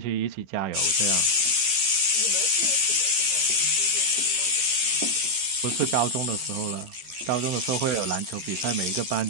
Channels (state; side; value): late; left; 15 ms